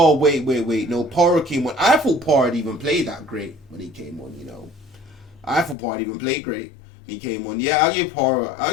wait. No, Porro came on. I thought Porro had even played that great when he came on, I thought Porro had even played great when he came on. Yeah, I'll give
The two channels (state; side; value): drops out; right; at 5.8 s